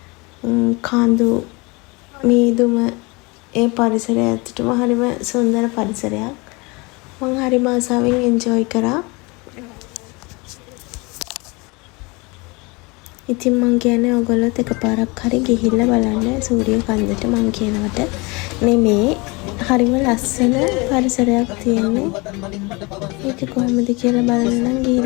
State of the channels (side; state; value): right; quieter; 26.9 dB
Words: කඳු මීදුම ඒ පරිසරය ඇත්තටම හරිම සුන්දර පරිසරයක්. මම හරිම ආසාවෙන් එන්ජොයි කරා. ඉතින් මං කියන්නේ ඔයගොල්ලොත් එකපාරක් හරි ගිහිල්ලා බලන්න සූරිය කන්දට. මං කියනවට නෙමේ, හරිම ලස්සන පරිසරයක් තියෙන්නේ. ඒක කොහොමද කියලා බලන්න නම්